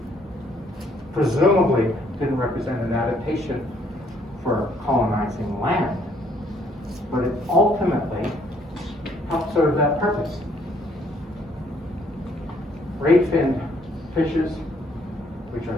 presumably didn't represent an adaptation for colonizing land, but it ultimately helped serve that purpose. Ray-finned fishes, which are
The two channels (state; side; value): normal; both; correlation 0.66